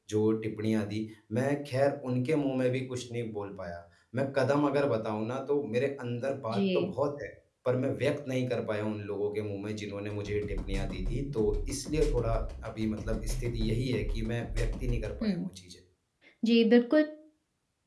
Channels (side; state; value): both; identical; correlation 1.00